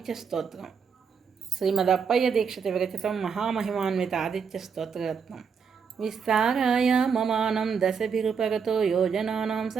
స్తోత్రం. శ్రీమదప్పయ్య దీక్షిత విరచితం మహామహిమాన్విత ఆదిత్య స్తోత్రరత్నం. విస్తారాయ మమానం దశభిరుపగతో యోజనానాం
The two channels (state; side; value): quieter; left; 6.2 dB